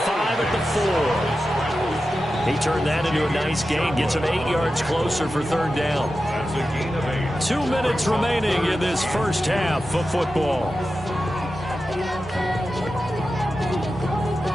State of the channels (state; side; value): normal; both; correlation 0.92